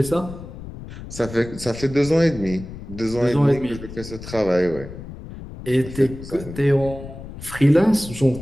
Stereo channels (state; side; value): noise; left; rumble, 13 dB below the sound